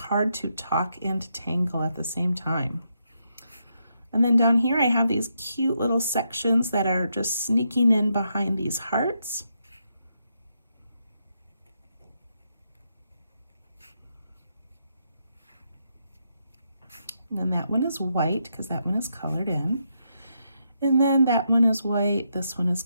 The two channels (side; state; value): both; inverted; correlation -0.80